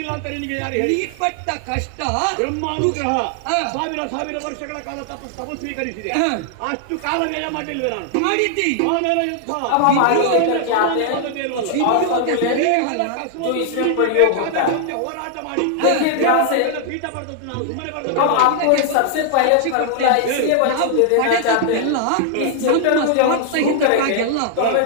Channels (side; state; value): both; different; correlation -0.01